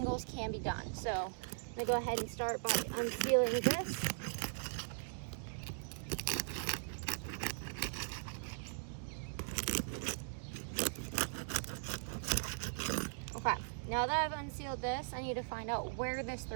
can be done. So I'm gonna go ahead and start by unsealing this. Okay, now that I've unsealed this, I need to find out where this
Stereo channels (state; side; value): silent; left; digital silence